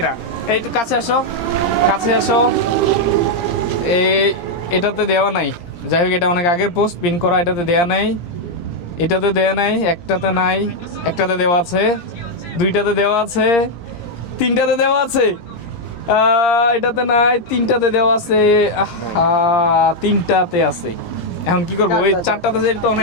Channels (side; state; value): right; late; 17 ms